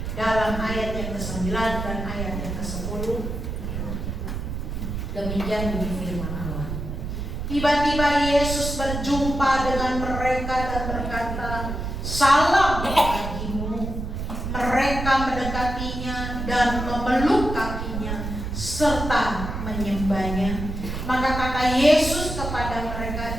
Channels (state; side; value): noise; right; rumble, 5 dB below the sound